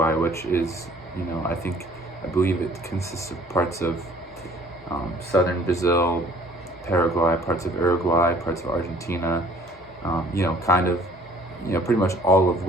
which is, you know, I believe it consists of parts of southern Brazil, Paraguay, parts of Uruguay, parts of Argentina, you know, kind of, you know, pretty much all of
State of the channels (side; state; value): both; normal; correlation 0.55